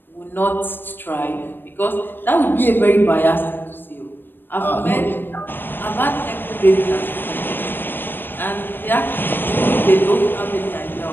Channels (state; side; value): late; right; 0.096 ms